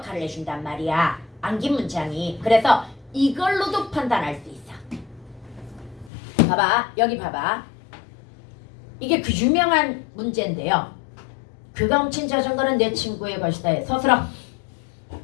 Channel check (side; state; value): right; drops out; at 6.1 s